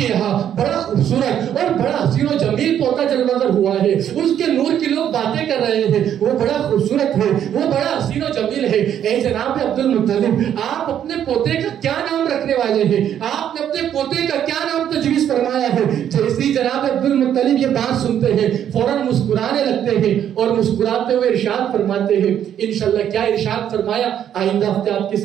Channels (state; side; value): quieter; left; 9.9 dB